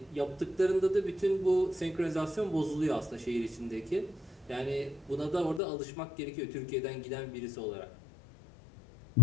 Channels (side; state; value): right; drops out; at 5.6 s